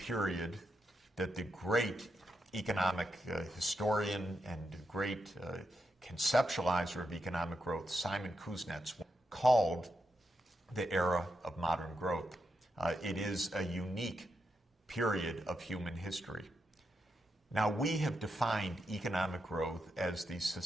that the great economic historian and great conceptualizer of economic growth, Simon Kuznets, called the era of modern growth. It is a unique period of human history. Now, we have defined economic growth as the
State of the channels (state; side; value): normal; both; correlation 0.85